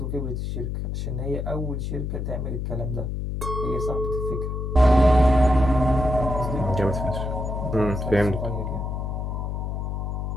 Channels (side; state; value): left; noise; hum, 3 dB below the sound